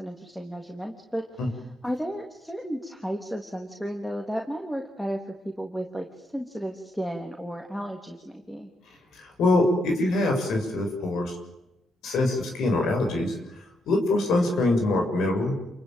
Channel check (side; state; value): both; normal; correlation 0.80